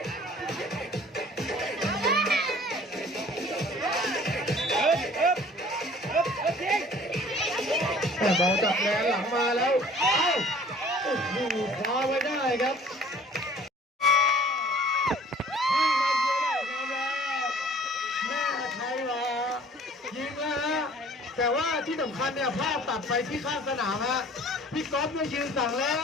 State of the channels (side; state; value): both; normal; correlation 0.51